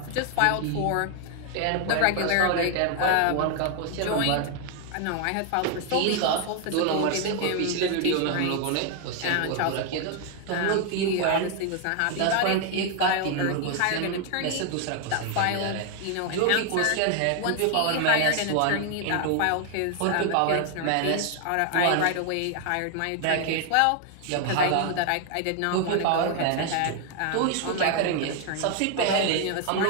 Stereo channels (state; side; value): different; both; correlation 0.00